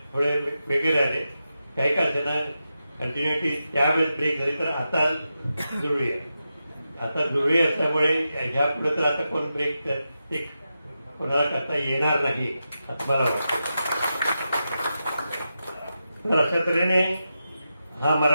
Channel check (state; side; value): inverted; both; correlation -0.89